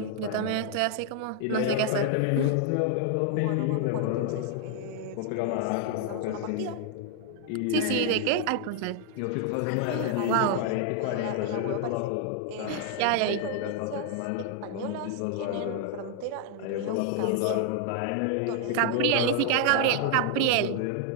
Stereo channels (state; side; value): different; both; correlation 0.00